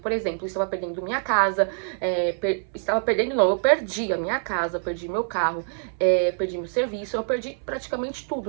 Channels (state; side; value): silent; left; 62 dB below the other